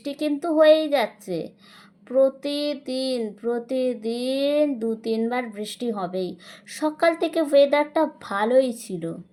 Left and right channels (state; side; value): identical; both; correlation 1.00